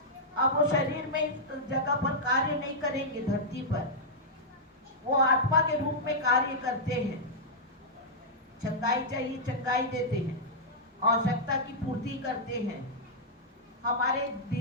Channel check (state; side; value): normal; both; correlation -0.09